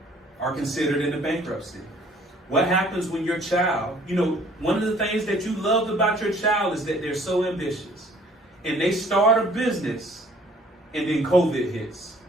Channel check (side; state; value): both; normal; correlation 0.56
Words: are considered in the bankruptcy. What happens when your child, one of the things that you loved about your child is that they're so ambitious. And they start a business, and then COVID hits.